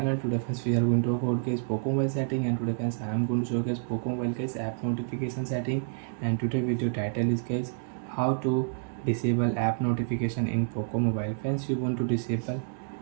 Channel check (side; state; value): left; silent; digital silence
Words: Today friends we are going to talk about guys Poco mobile setting, and today friends I am going to show guys Poco mobile guys app notification setting. And today video title is guys how to disable app notification in Poco mobile. Friends, you want to disable